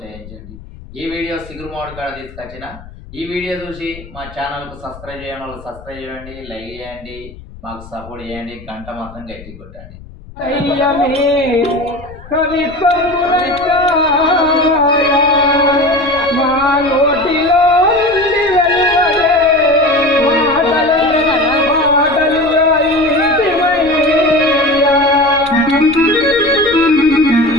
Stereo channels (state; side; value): noise; left; rumble, 18 dB below the sound